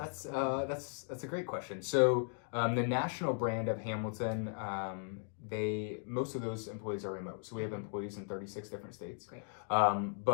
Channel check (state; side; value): silent; right; 53 dB below the other